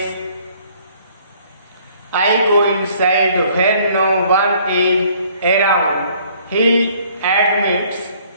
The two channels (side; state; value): both; inverted; correlation -0.59